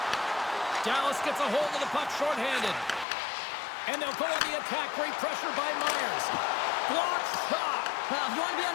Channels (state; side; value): drops out; right; at 3.1 s